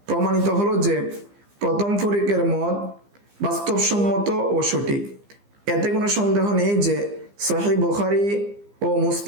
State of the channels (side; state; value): left; late; 15 ms